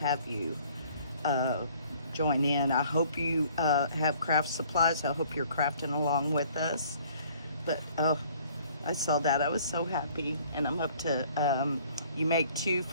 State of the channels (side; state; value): both; inverted; correlation -0.57